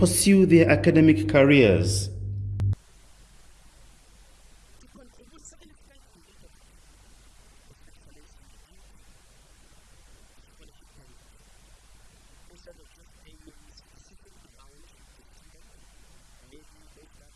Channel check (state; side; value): identical; both; correlation 1.00